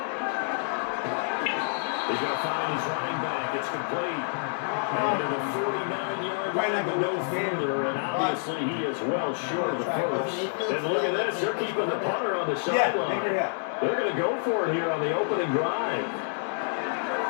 He's going to find his running back. It's complete. And to the 49-yard line, but no further, and obviously he is well short of the first. And look at this, they're keeping the punter on the sideline. They're going to go for it here on the opening drive.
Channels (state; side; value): silent; right; digital silence